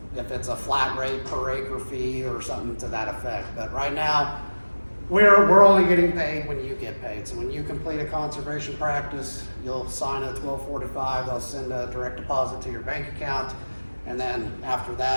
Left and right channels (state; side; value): inverted; both; correlation -1.00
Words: if it's a flat rate per acre fee or something to that effect. But right now, we're only getting paid when you get paid. So when you complete a conservation practice, you'll sign a 1245, they'll send a direct deposit to your bank account, and then after